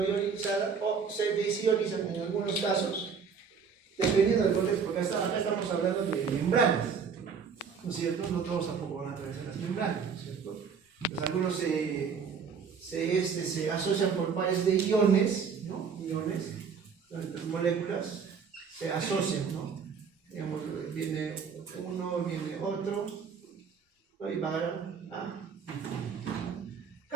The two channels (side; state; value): left; quieter; 6.1 dB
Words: ionizada, o se desionizan en algunos casos, dependiendo del contexto, porque acá estamos hablando de membranas, ¿no es cierto? No todos tampoco van a atravesar las membranas, ¿no es cierto? Pues algunos se asocian por pares de iones, ¿no? Iones, entre moléculas, se asocian, ¿no? Digamos, viene uno, viene otro, y va a